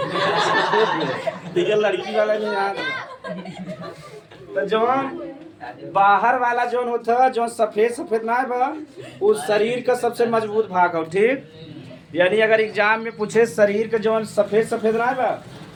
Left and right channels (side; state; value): both; identical; correlation 1.00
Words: ठीक है लड़की वाला भी याद तो जवान बाहर वाला जोन होता जो सफेद सफेद ना है बा उस शरीर का सबसे मजबूत भाग हो, ठीक। यानी अगर एग्जाम में पूछे शरीर का जो सफेद सफेद ना है बा